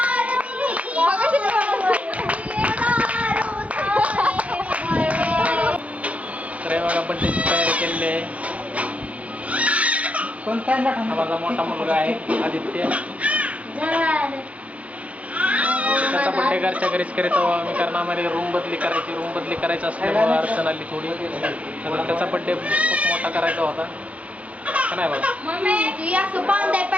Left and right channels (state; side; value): late; left; 0.065 ms